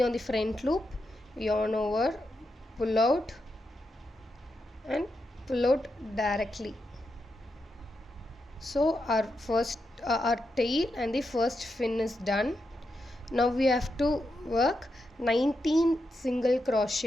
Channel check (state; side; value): normal; both; correlation 0.85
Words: on the front loop. Yarn over, pull out and pull out directly. So our tail and the first fin is done. Now we have to work 19 single